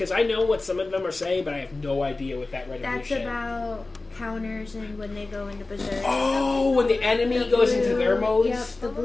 I know what some of them are saying, but I have no idea what that red and blue That's shit. about counters and when they go into Berserk. Oh, when the enemy goes into their modes? Yep, the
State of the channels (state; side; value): quieter; right; 3.3 dB